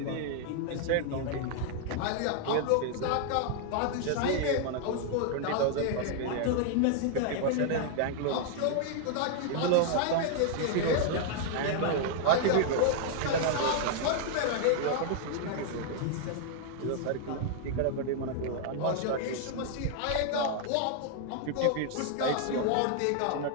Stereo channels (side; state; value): both; different; correlation 0.00